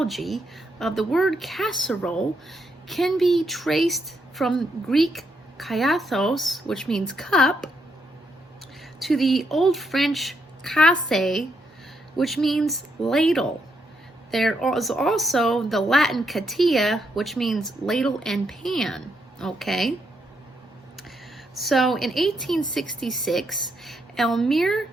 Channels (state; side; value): normal; both; correlation 0.78